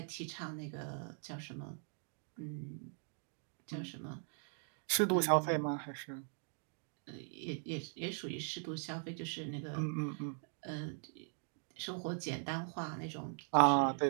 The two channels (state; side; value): silent; left; 51 dB below the other